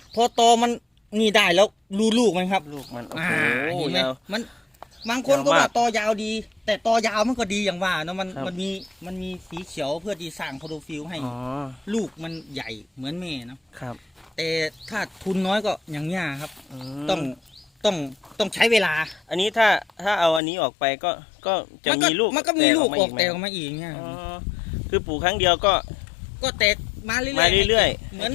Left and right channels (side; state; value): right; drops out; at 20.4 s